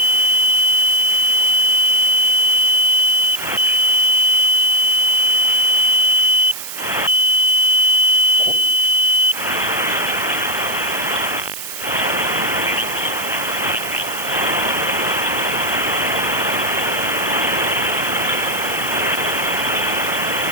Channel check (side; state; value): right; noise; hiss, 9 dB below the sound